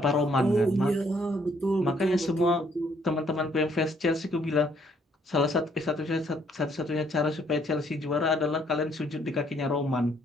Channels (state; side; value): normal; both; correlation 0.67